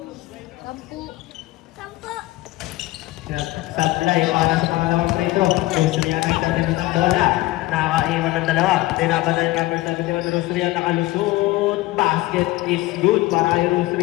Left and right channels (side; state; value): right; quieter; 18.5 dB